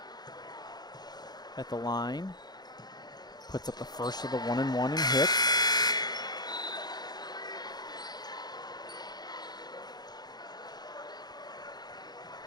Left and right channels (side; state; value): right; late; 0.20 ms